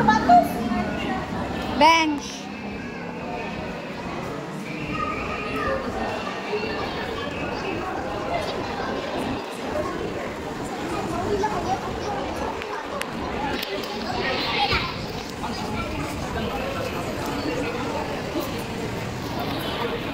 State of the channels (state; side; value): identical; both; correlation 1.00